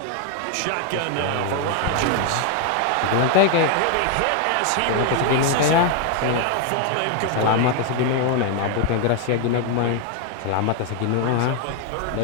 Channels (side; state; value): both; different; correlation 0.00